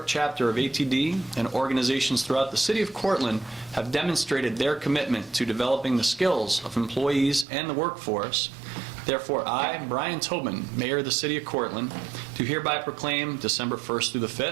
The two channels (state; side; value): drops out; left; at 7.5 s